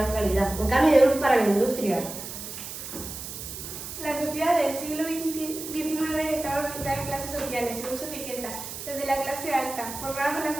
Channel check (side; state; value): right; noise; hiss, 9 dB below the sound